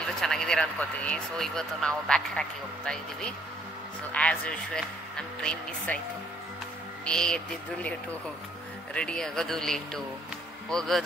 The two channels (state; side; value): normal; both; correlation 0.64